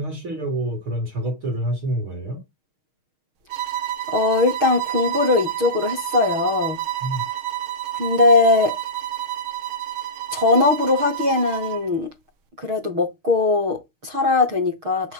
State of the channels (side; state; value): left; late; 6.4 ms